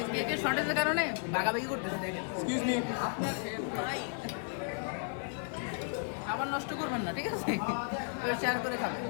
কেকের শর্টেজের কারণে ভাগাভাগি করতেছে, দেখেন। এক্সকিউজ মি, আপনার ভাই, খাবার নষ্ট করবেন না, ঠিক আছে? শেয়ার করে খাবেন।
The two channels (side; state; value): right; silent; 55 dB below the other